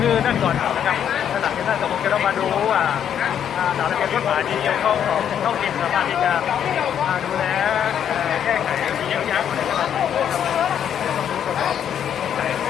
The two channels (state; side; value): quieter; right; 9.1 dB